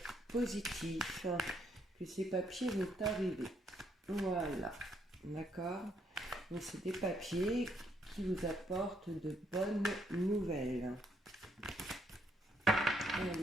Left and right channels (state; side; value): normal; both; correlation 0.72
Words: positif, que ces papiers vont arriver. Voilà, d'accord? Donc c'est des papiers qui vous apportent de bonnes nouvelles.